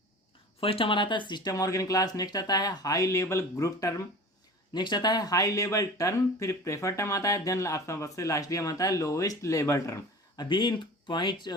फर्स्ट हमारा आता है सिस्टम ऑर्गन क्लास, नेक्स्ट आता है high level group term, next आता है हाई लेवल टर्म, फिर प्रेफर टर्म आता है, देन सबसे लास्ट में आता है लोवेस्ट लेवल टर्म। अभी इन पॉइंट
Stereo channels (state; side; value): normal; both; correlation 0.38